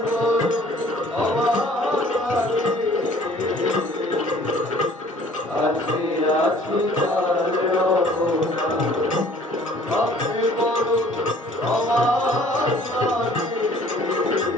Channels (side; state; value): both; normal; correlation 0.54